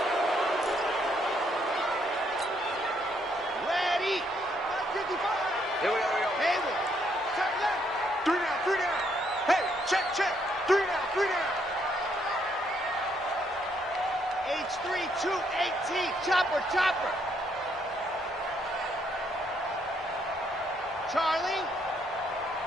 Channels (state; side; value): normal; both; correlation 0.72